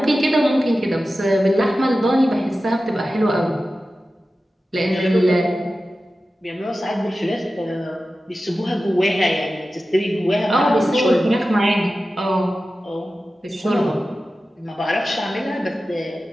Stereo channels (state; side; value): normal; both; correlation 0.94